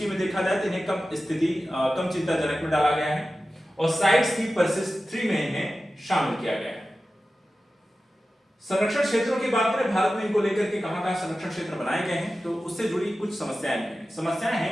में देखा जाए तो इन्हें कम चिंताजनक में डाला गया है और साइट्स की परसिस्ट 3 में इन्हें शामिल किया गया है। संरक्षण क्षेत्रों की बात करें, भारत में इनको लेकर के कहां संरक्षण क्षेत्र बनाए गए हैं तो उससे जुड़ी कुछ समस्याएं हैं। समस्याएं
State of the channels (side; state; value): both; normal; correlation 0.94